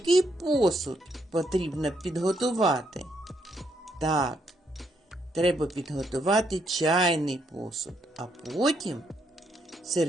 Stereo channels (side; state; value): both; normal; correlation 0.75